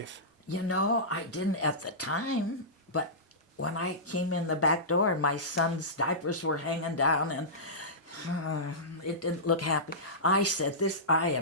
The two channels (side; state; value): both; normal; correlation -0.17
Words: You know, I didn't at the time, but when I came in the back door and my son's diapers were hanging down and it didn't look happy, I said, I